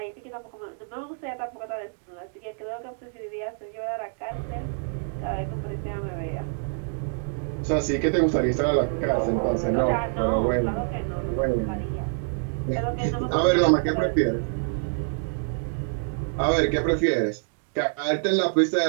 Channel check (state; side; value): silent; left; digital silence